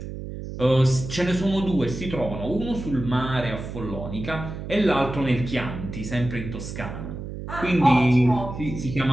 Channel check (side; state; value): right; noise; hum, 8 dB below the sound